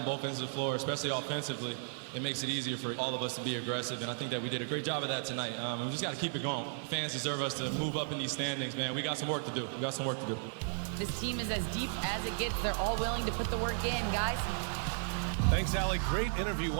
both ends of the floor, especially offensively, it makes it easier for all of us to be aggressive, and I think that we did a great job of that tonight. We just got to keep it going. Fans deserve us to move up in these standings, man. We got some work to do. We got some work to do. This team is as deep as it gets. They're all willing to put the work in, guys. Thanks, Allie. Great interview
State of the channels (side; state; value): left; silent; digital silence